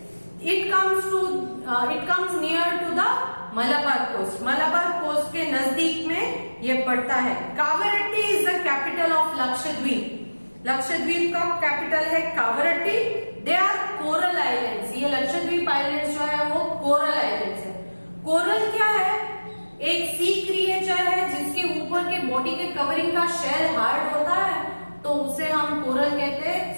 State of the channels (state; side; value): inverted; both; correlation -1.00